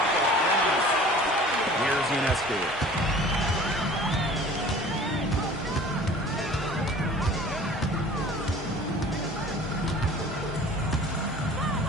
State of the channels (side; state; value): both; normal; correlation 0.46